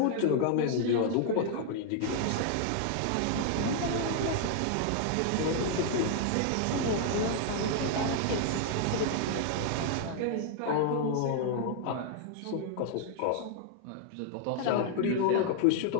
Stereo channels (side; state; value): both; different; correlation 0.00